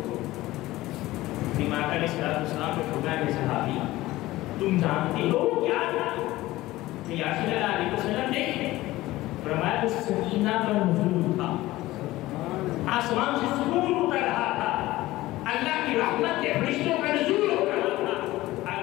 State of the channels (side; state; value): right; quieter; 17.5 dB